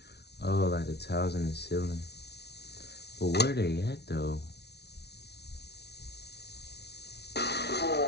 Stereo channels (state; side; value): late; right; 0.49 ms